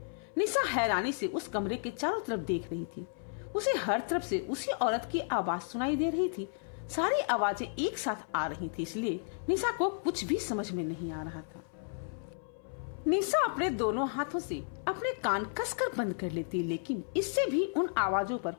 निशा हैरानी से उस कमरे के चारों तरफ देख रही थी। उसे हर तरफ से उसी औरत की आवाज सुनाई दे रही थी। सारी आवाजें एक साथ आ रही थी, इसलिए निशा को कुछ भी समझ में नहीं आ रहा था। निशा अपने दोनों हाथों से अपने कान कसकर बंद कर लेती, लेकिन इससे भी उन आवाजों पर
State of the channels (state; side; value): silent; right; 56 dB below the other